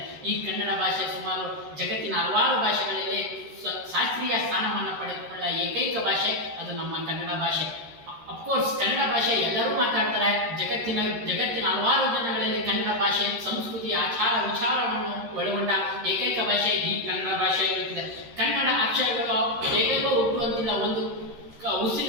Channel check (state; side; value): late; left; 13 ms